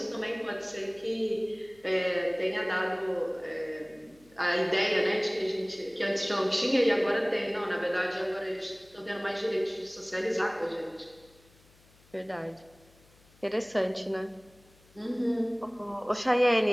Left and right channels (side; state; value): left; noise; hum, 29 dB below the sound